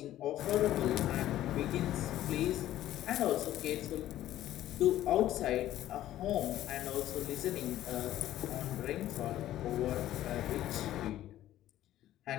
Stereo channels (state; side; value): quieter; right; 13.4 dB